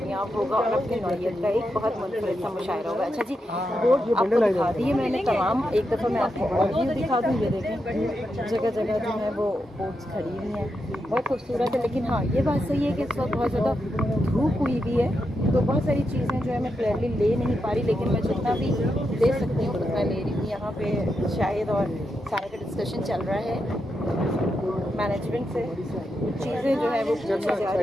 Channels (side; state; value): both; normal; correlation 0.85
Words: होगा और अपनी नौयत का एक बहुत मुनफरिद सा मुशायरा होगा। अच्छा जी, बोर्ड आपको दिखा दिए मैंने तमाम, एक दफ़ा मैं आपको और व्यू दिखा दूँ। ये देखें जगह जगह जो है वो बोट्स खड़ी हुई हैं, बहुत खूबसूरत है। लेकिन हाँ, ये बात सही है कि इस वक्त बहुत ज़्यादा धूप हुई भी है, तो बहुत सारी चीज़ें जो है मैं क्लियरली ले नहीं पा रही, लेकिन मैं जितना भी दे सकती हूँ उतना ले रही हूँ। यहाँ पे शायद और सारा का डिस्कशन चल रहा है मैनेजमेंट से, चीज़ें जो है वो पूछी जा